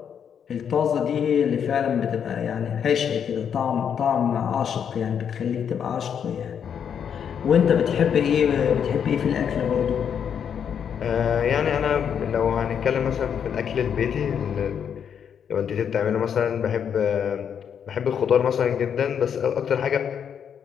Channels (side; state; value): right; quieter; 7.9 dB